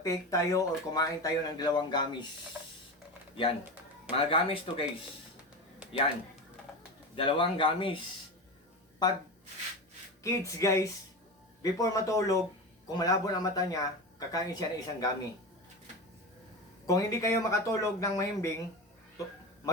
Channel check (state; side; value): normal; both; correlation 0.23